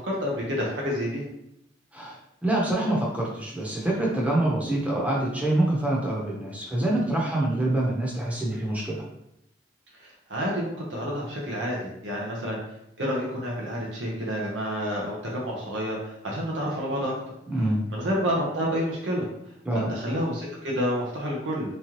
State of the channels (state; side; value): normal; both; correlation 0.61